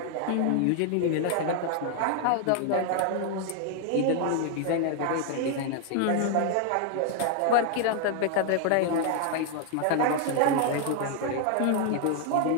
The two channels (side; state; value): both; different; correlation 0.00